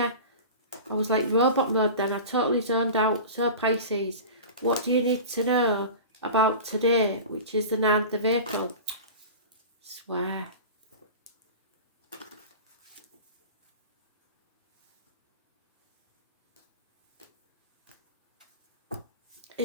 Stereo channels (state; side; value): inverted; both; correlation -0.34